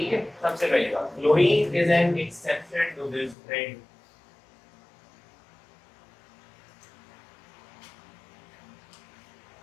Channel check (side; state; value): right; drops out; at 3.4 s